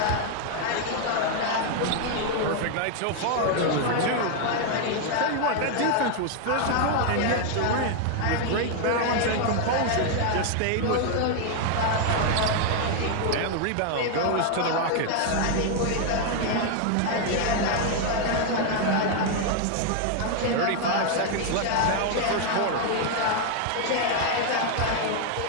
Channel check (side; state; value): both; different; correlation 0.00